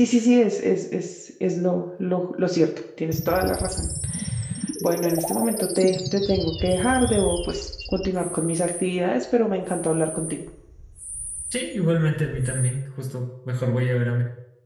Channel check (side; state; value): both; identical; correlation 1.00